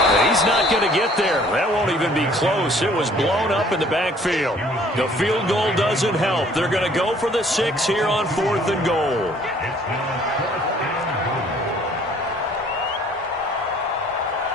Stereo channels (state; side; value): normal; both; correlation 0.57